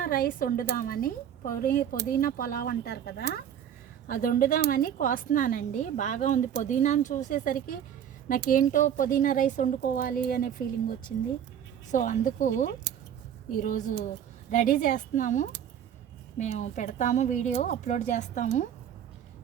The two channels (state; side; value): quieter; left; 9.3 dB